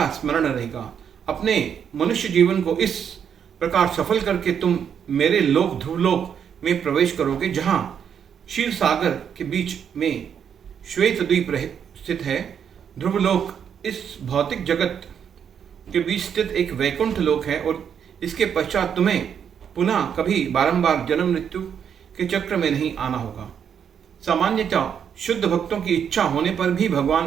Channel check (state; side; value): quieter; left; 8.0 dB